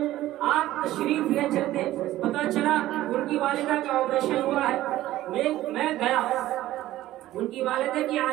آپ تشریف لے چلتے. پتہ چلا ان کی والدہ کا آپریشن ہوا ہے. میں گیا ان کی والدہ کی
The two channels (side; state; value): left; quieter; 15.0 dB